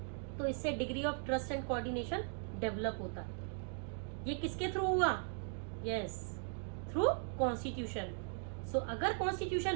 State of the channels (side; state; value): left; silent; 52 dB below the other